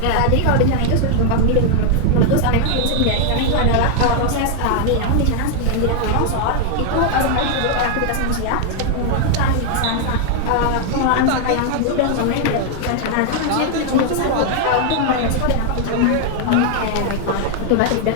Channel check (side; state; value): both; different; correlation 0.00